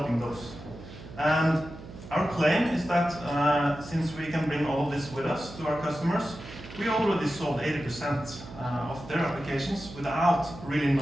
those. And our claim is that since we can bring all of this with us to our customers, we already solved 80% of their applications without really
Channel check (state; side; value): noise; right; hum, 15 dB below the sound